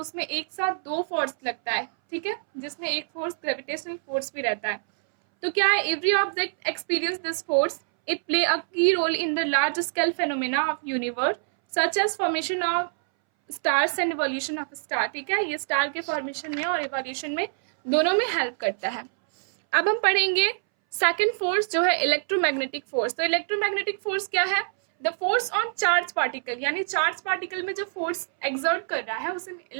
एक साथ दो फोर्स लगता है. ठीक है, जिसमें एक फोर्स ग्रेविटेशनल फोर्स भी रहता है. तो क्या है, every object experience this force. It play a key role in the large scale phenomena of universe such as formation of stars and evolution of star. ठीक है, ये स्टार के फॉर्मेशन में और इवोल्यूशन में दोनों में हेल्प करता है. अब हम पढ़ेंगे सेकंड फोर्स जो है इलेक्ट्रोमैग्नेटिक फोर्स. तो इलेक्ट्रोमैग्नेटिक फोर्स क्या है? The force on charge particle, यानी चार्ज पार्टिकल में जो फोर्स एक्सर्ट कर रहा है उसे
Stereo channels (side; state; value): left; silent; 61 dB below the other